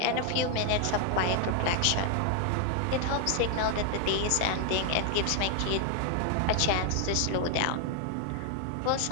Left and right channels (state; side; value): different; both; correlation 0.00